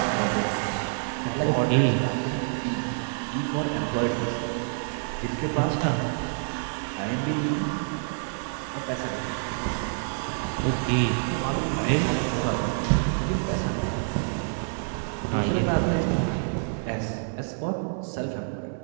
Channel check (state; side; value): silent; left; 60 dB below the other